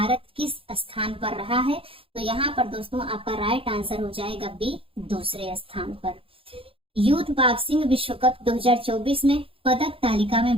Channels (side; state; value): left; late; 0.27 ms